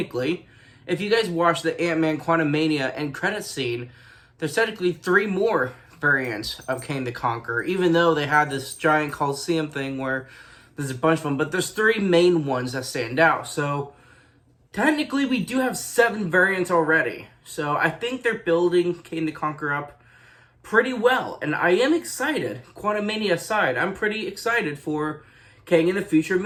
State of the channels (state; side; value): identical; both; correlation 1.00